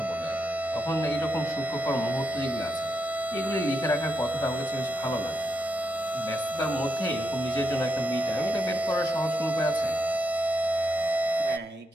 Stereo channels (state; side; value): normal; both; correlation 0.82